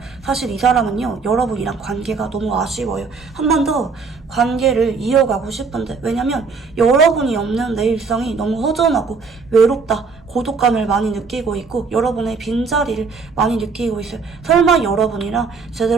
사실 이 사람은요, 여러분이랑 관계가 너무 아쉬워요. 한 번 더 관계를 이어가고 싶은데, 왜냐면 여러분이 없는 내 일상이 너무 허전하고 외롭다, 고독감을 많이 느끼고 있고, 여러분의 빈자리를 많이 느끼고 있어요. 설마 여러분이랑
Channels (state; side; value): quieter; left; 4.9 dB